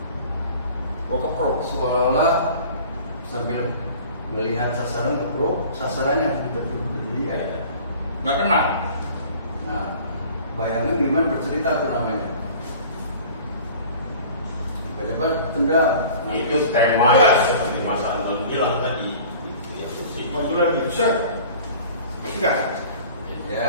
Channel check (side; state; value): both; inverted; correlation -0.45